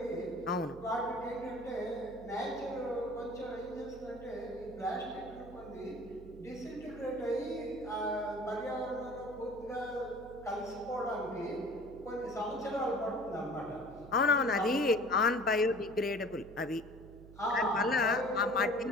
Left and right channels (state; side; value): noise; right; hum, 17 dB below the sound